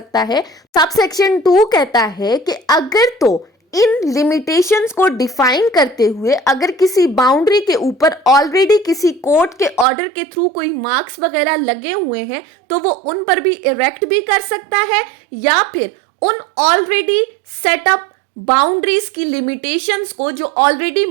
है, सब सेक्शन 2 कहता है कि अगर तो इन लिमिटेशंस को डिफाइन करते हुए अगर किसी बाउंड्री के ऊपर ऑलरेडी किसी कोर्ट के ऑर्डर के थ्रू कोई मार्क्स वगैरह लगे हुए हैं तो वो उन पर भी इरेक्ट भी कर सकता है, या फिर उन ऑलरेडी सेटअप बाउंड्रीज की लिमिटेशंस को जो ऑलरेडी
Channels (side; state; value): left; drops out; at 9.9 s